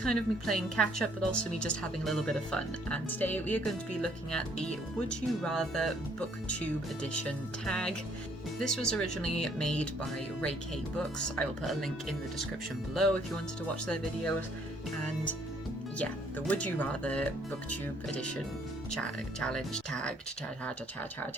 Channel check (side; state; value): both; normal; correlation 0.64